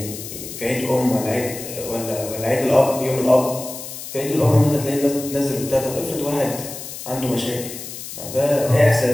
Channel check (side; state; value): left; noise; hiss, 10 dB below the sound